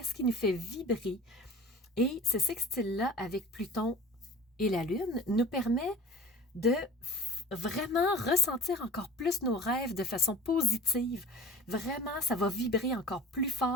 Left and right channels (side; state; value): both; normal; correlation 0.42